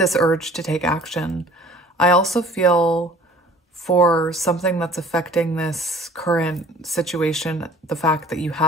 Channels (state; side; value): normal; both; correlation 0.50